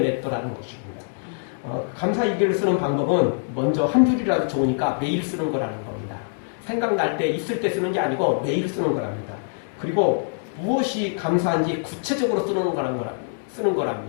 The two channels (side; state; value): right; silent; digital silence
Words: 것입니다. 감사일기를 쓰는 방법은 먼저 한 줄이라도 좋으니까 매일 쓰는 거라는 겁니다. 생각날 때 있을 때 쓰는 게 아니고 매일 쓰는 거랍니다. 그리고 무엇이 감사한지 구체적으로 쓰는